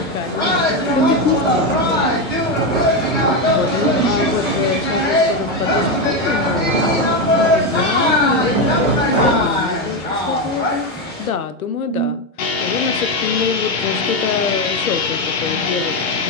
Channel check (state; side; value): normal; both; correlation 0.10